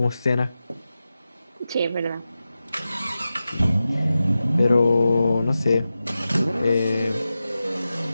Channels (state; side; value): inverted; both; correlation -0.93